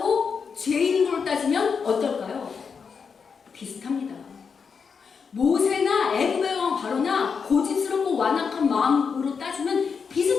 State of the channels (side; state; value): right; quieter; 5.9 dB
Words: 죄인인 걸로 따지면 어떨까요? 비슷합니다. 모세나 애굽의 왕 바로나 고집스럽고 완악한 마음으로 따지면